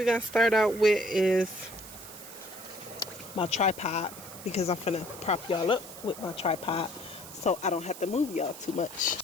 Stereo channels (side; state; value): right; noise; hiss, 14 dB below the sound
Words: going to start out with is my tripod, because I'm finna prop y'all up with my tripod so I don't have to move y'all too much.